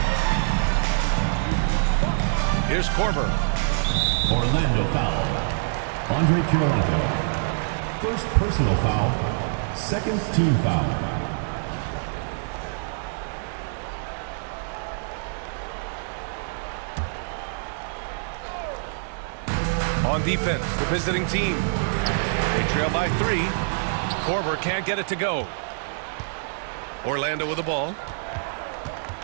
Here's Korver. Orlando foul. Andre Kirilenko. First personal foul. Second team foul. On defense, the visiting team. They trail by 3. Korver can't get it to go. Orlando with the ball.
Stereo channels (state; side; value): silent; left; 62 dB below the other